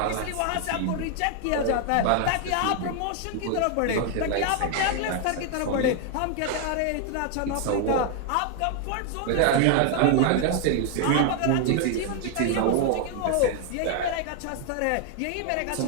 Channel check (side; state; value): both; different; correlation 0.00